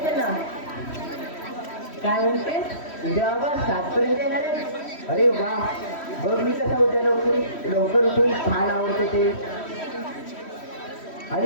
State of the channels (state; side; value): late; right; 3.1 ms